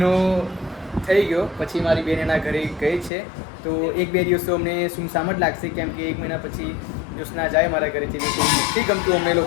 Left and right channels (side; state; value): right; drops out; at 3.1 s